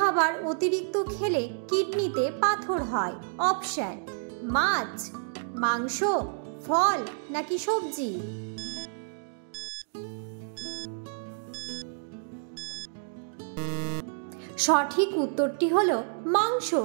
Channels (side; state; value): left; silent; digital silence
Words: অতিরিক্ত খেলে কিডনিতে পাথর হয়? অপশন: মাছ, মাংস, ফল নাকি সবজি? সঠিক উত্তরটি হলো মাংস।